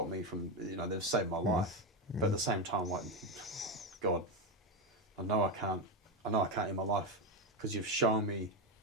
me from, they've saved my life. But at the same time, like, God, I know I can't end my life because You've shown me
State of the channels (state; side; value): normal; both; correlation 0.11